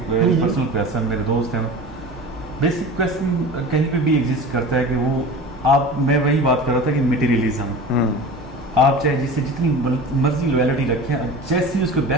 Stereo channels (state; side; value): normal; both; correlation 0.35